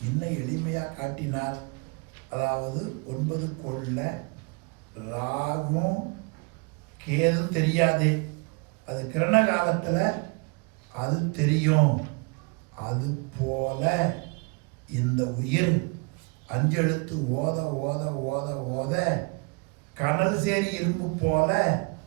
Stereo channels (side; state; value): left; quieter; 31.6 dB